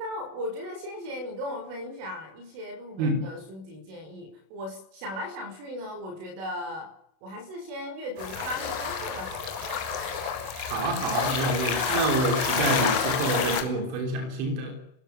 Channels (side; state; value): left; late; 32 ms